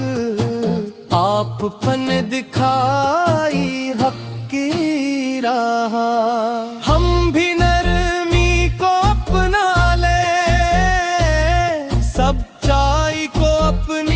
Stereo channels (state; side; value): identical; both; correlation 1.00